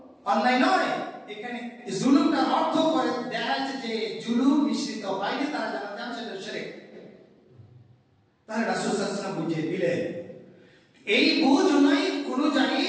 অন্যায় নয়। এখানে জুলুমটার অর্থ করে দেখা যাচ্ছে যে জুলুম মিশ্রিত হয়নি, তারা জান্নাতে যাবে, সেটা শিরক। তাহলে রাসূল সাল্লাল্লাহু আলাইহি ওয়াসাল্লাম বুঝিয়ে দিলেন। এই বুঝ অনুযায়ী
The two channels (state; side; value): identical; both; correlation 1.00